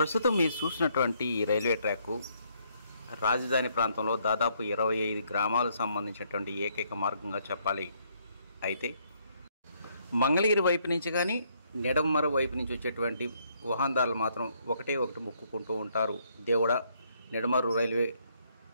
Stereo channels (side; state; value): both; inverted; correlation -0.70